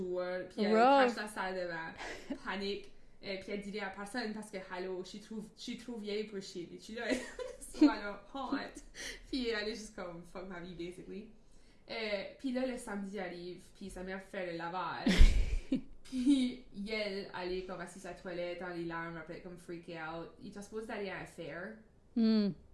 Puis elle crache la salle de bain. Panique. Puis elle dit à personne parce que, hello, je suis trop vieille pour chier. Puis tu là, alors, honte. Puis elle est juste comme, fuck ma vie, basically. Puis là, le samedi arrive, puis sa mère fait le lavage. Puis elle est comme assise à la toilette, dans les larmes, après comme freaké out. Il était supposé d'aller à un fair.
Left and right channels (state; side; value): identical; both; correlation 1.00